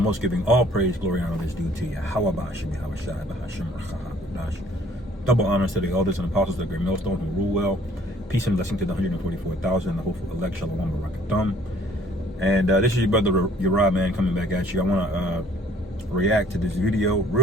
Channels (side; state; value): both; normal; correlation 0.58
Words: giving all praise, glory, and honor is due to Yahweh. Double honors to the elders and apostles of the great millstone who rule well. Peace and blessing to the 144,000 and the hopeful elect. Shalom Barakatum. And this is your brother Uriah, man, coming back at you. I want to react to this video